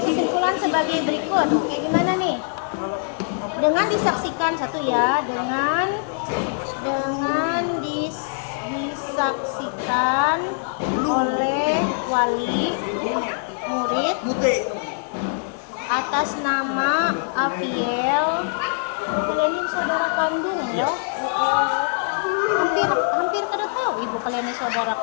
kesimpulan sebagai berikut. Kayak gimana nih? Dengan disaksikan satu ya, dengan disaksikan oleh wali murid atas nama Aviel Kalian ini saudara kandung ya? Hampir kada tahu ibu kalian ini saudara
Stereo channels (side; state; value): right; silent; 63 dB below the other